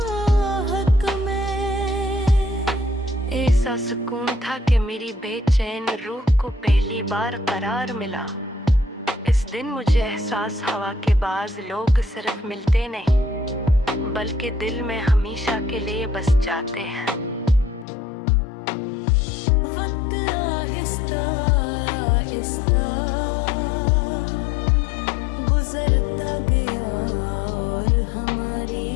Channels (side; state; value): right; drops out; at 17.9 s